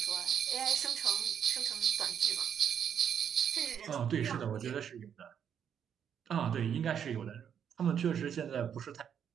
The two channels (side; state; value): left; quieter; 8.4 dB